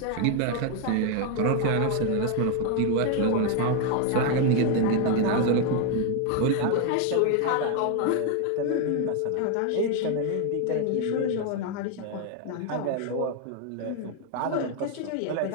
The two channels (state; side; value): different; both; correlation 0.01